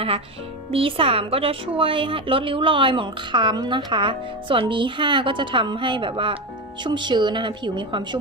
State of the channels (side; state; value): both; normal; correlation 0.17